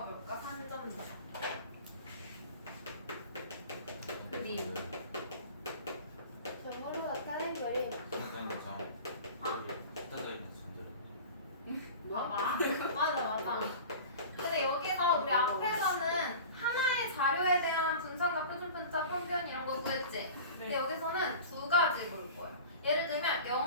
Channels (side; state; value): both; inverted; correlation -0.37